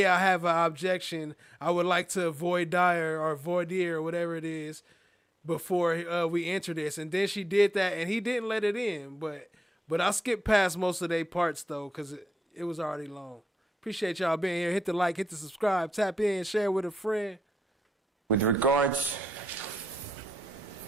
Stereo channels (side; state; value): both; normal; correlation 0.87